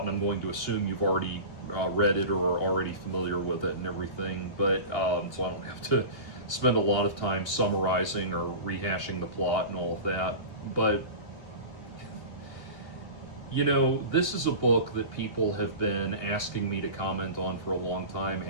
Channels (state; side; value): late; right; 2.8 ms